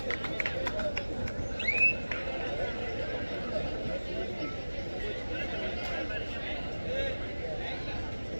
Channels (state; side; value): inverted; both; correlation -1.00